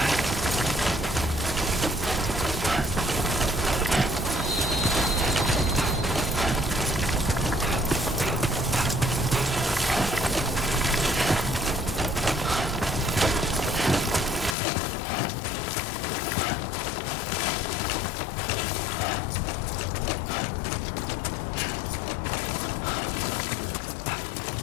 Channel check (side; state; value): right; drops out; at 14.6 s